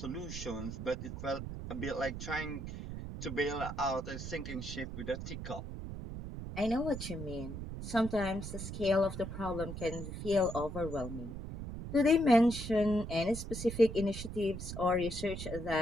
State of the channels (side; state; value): right; noise; rumble, 7 dB below the sound